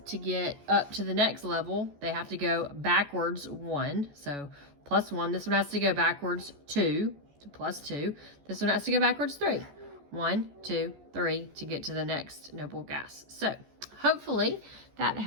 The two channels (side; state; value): left; late; 14 ms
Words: to get up to the next level, they have to go backwards 1. So +1. This one has to go backwards 2 to +2. This one has to go backwards 3. 1, 2, 3 to get to the next noble gas. So hopefully that